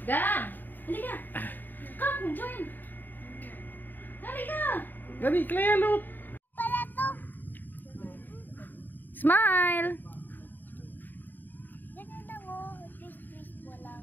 Gab! Halika! Come, join! Halika! Dali, Clea, look! Pala to. Smile! Ganun lang oh. Twist wala.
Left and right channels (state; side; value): late; right; 0.090 ms